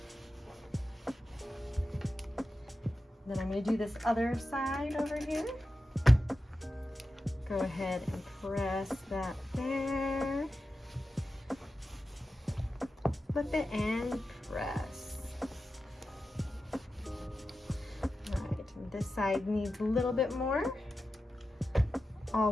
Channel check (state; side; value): normal; both; correlation 0.92